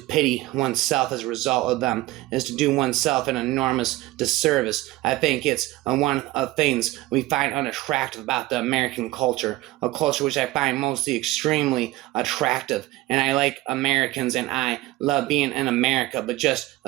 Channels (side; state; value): left; quieter; 18.3 dB